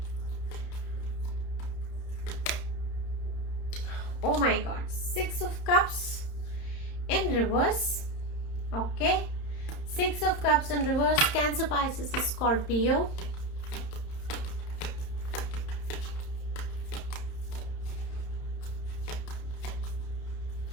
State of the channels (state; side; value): late; right; 30 ms